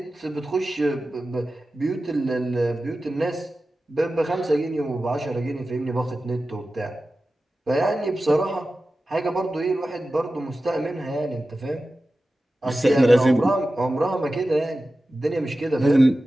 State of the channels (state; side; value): normal; both; correlation 0.94